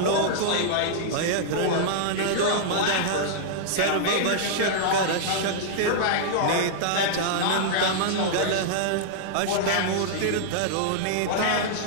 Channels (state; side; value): different; both; correlation -0.02